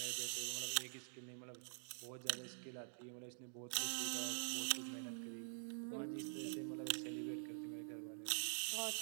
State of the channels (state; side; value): silent; left; digital silence